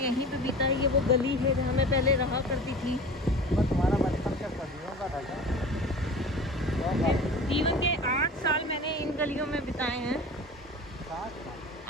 पे बीता है। ये वो गली है जहाँ मैं पहले रहा करती थी। तुम्हारा बचपन क्या सदियों का था क्या? जीवन के 8 साल मैंने इन गलियों में बिताए हैं।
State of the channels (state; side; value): normal; both; correlation 0.37